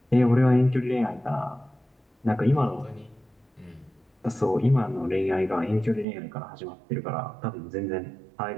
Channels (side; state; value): left; drops out; at 6.1 s